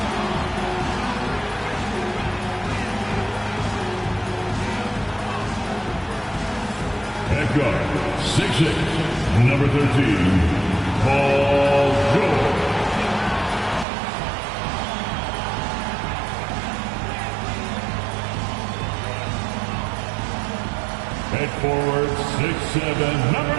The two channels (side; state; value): left; drops out; at 13.9 s